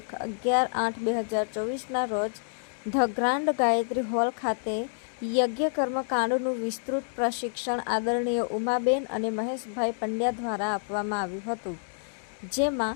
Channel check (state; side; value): silent; right; 59 dB below the other